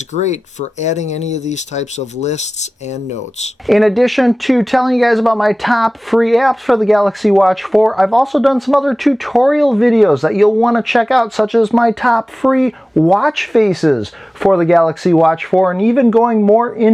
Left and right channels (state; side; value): normal; both; correlation 0.97